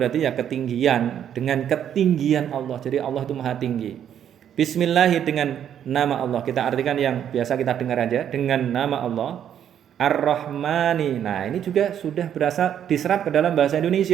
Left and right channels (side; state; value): left; quieter; 9.5 dB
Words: ya ketinggian, dengan ketinggian Allah. Jadi Allah itu maha tinggi. Bismillahi, dengan nama Allah. Kita artikan yang biasa kita dengar aja, dengan nama Allah. Ar-Rahmani. Nah, ini juga sudah berasal diserap ke dalam bahasa